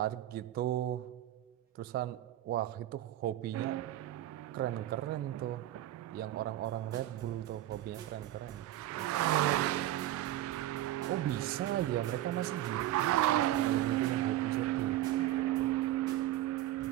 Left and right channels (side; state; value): left; quieter; 14.0 dB